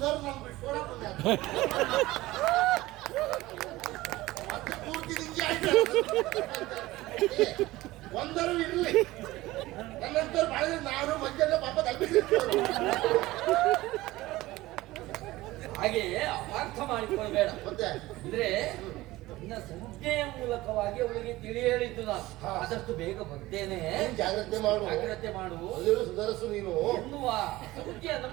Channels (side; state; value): left; quieter; 18.2 dB